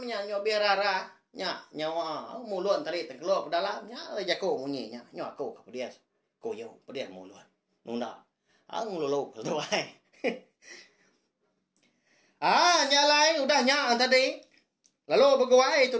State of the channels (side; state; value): both; identical; correlation 1.00